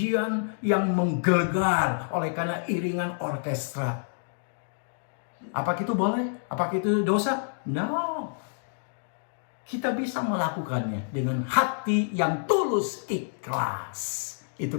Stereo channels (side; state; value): right; silent; digital silence